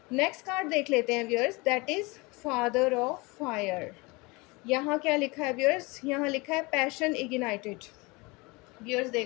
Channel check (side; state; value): right; quieter; 25.5 dB